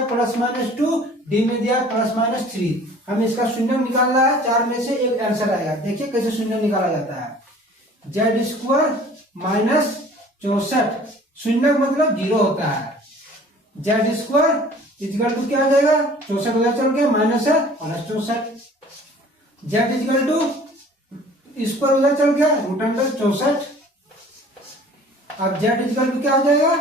+-2, डी में दिया है +-3। हमें इसका शून्य निकालना है। 4 में से एक आंसर आएगा। देखिए कैसे शून्य निकाला जाता है। जेड स्क्वायर माइनस 64, शून्य मतलब 0 होता है। जेड स्क्वायर इक्वल टू क्या आ जाएगा? 64 उधर चल के माइनस है +64। जेड इक्वल टू स्क्वायर उधर चल गया √64। अब जेड इक्वल टू क्या हो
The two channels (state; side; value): normal; both; correlation 0.49